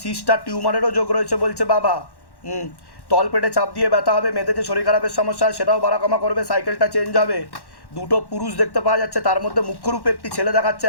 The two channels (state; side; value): late; right; 1.1 ms